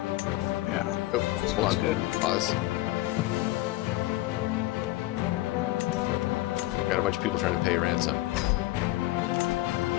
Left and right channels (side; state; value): right; quieter; 17.7 dB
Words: Yeah. oh, hold on. Good. Pause. Got a bunch of people trying to pay ransom.